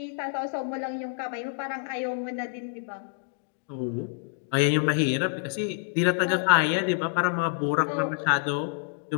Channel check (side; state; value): right; silent; digital silence